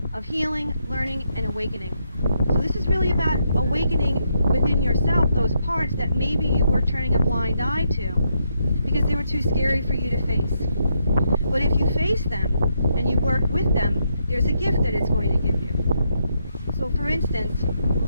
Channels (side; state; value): both; inverted; correlation -0.78